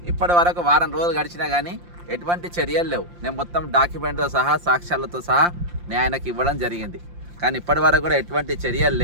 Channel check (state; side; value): late; left; 5.7 ms